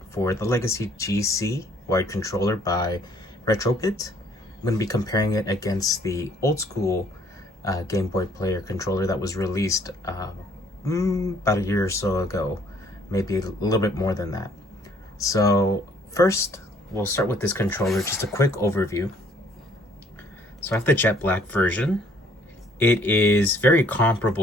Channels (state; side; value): normal; both; correlation 0.61